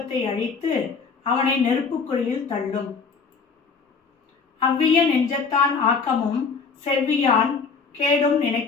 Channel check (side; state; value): right; quieter; 5.2 dB